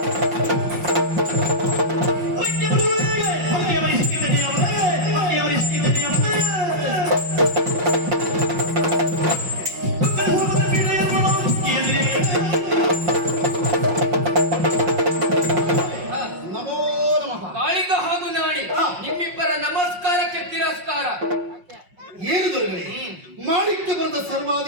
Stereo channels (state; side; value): late; left; 5.6 ms